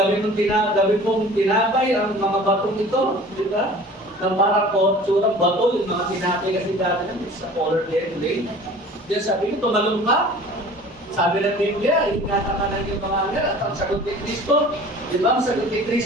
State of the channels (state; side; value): normal; both; correlation 0.44